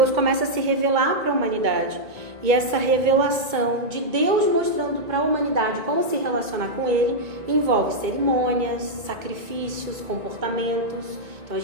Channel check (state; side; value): late; left; 2.2 ms